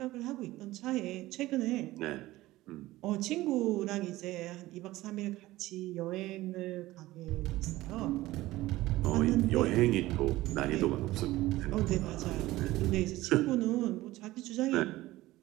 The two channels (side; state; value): left; quieter; 17.4 dB